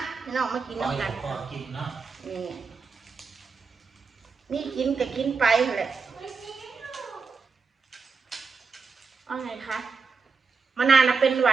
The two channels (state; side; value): quieter; left; 4.9 dB